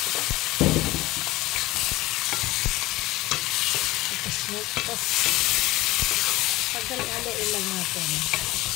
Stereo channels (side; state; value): right; quieter; 18.7 dB